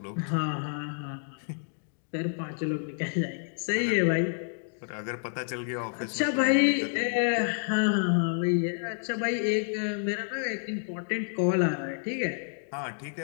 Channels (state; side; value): silent; right; digital silence